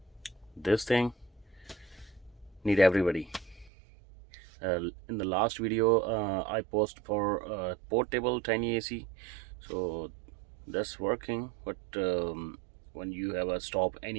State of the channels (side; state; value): left; drops out; at 3.7 s